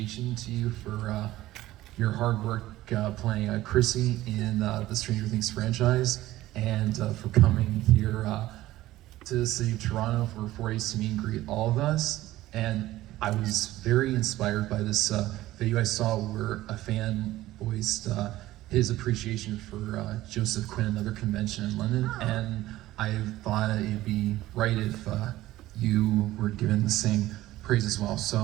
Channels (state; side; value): quieter; left; 16.0 dB